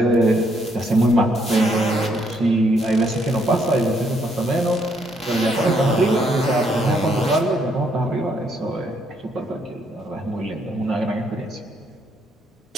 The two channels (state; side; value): normal; both; correlation 0.72